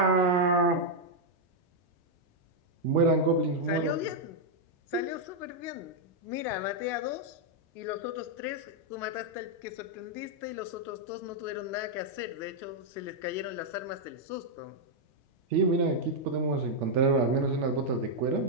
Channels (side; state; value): left; late; 2.9 ms